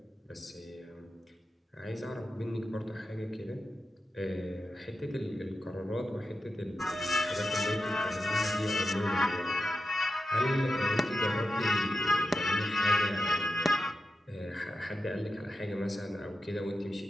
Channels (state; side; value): normal; both; correlation 0.90